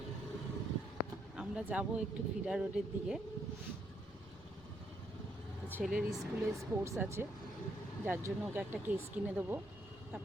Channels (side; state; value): right; noise; rumble, 24 dB below the sound